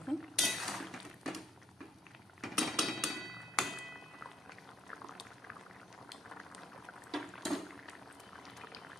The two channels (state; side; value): normal; both; correlation 0.70